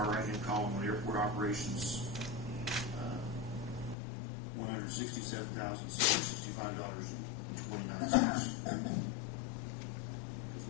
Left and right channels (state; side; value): drops out; right; at 4.0 s